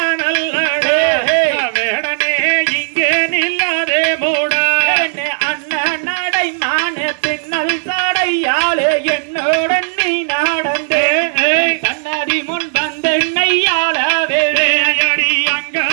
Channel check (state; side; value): silent; left; digital silence